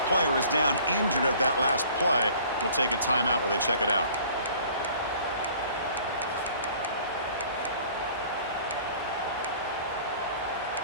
player is down injured at that last play. We'll take a timeout while they check it out.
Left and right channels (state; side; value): inverted; both; correlation -0.51